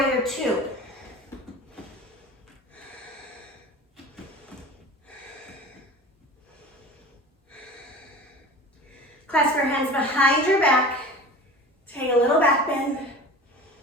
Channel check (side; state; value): both; normal; correlation 0.37